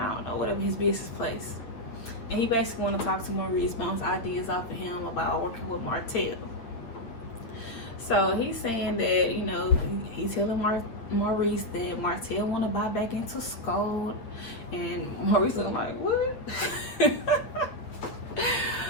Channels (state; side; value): late; right; 8.9 ms